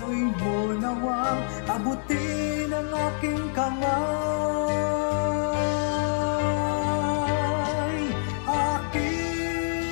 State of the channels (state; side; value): silent; right; 61 dB below the other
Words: mo nawang abutin ang aking kamay.